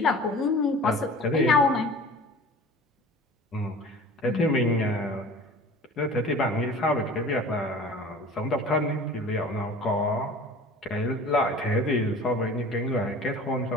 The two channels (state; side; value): normal; both; correlation 0.42